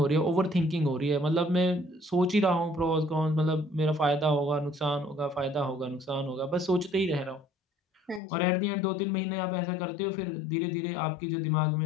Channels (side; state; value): right; drops out; at 8.2 s